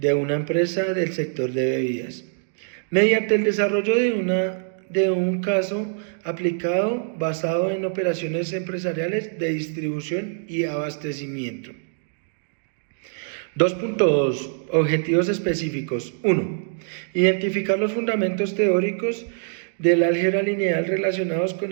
una empresa del sector de bebidas, mediante el desarrollo de un caso aplicado basado en operaciones empresariales de distribución y abastecimiento. 2.2. Objetivos específicos. 1. Identificar los fundamentos teóricos del álgebra lineal relacionados con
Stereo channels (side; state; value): left; silent; digital silence